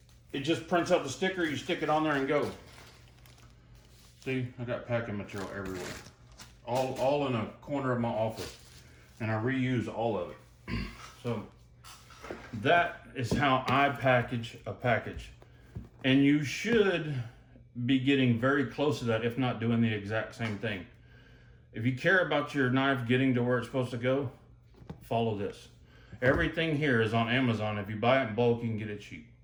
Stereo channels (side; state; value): both; identical; correlation 1.00